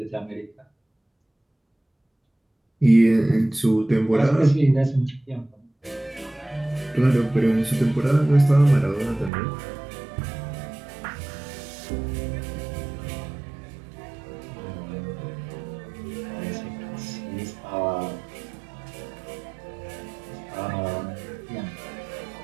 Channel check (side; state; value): left; drops out; at 9.3 s